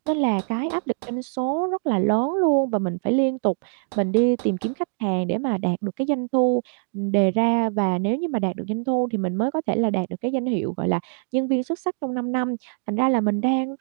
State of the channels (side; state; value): left; silent; 63 dB below the other